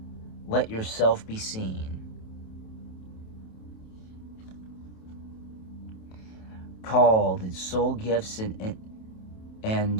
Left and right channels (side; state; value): right; late; 27 ms